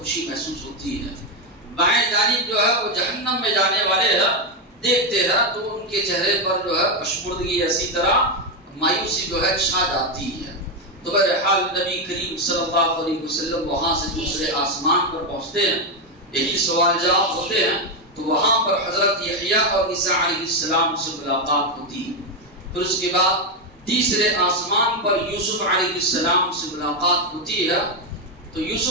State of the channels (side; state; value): both; normal; correlation 0.07